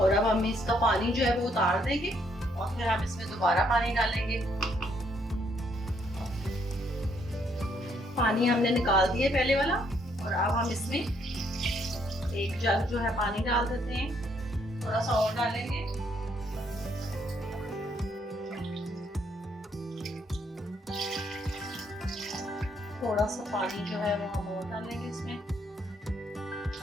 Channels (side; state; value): both; normal; correlation 0.71